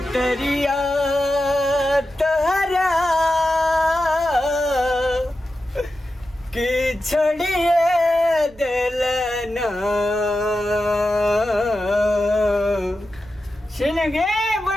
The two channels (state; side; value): noise; right; rumble, 25 dB below the sound